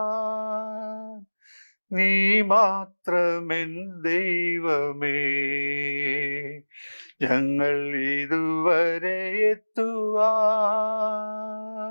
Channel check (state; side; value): inverted; both; correlation -1.00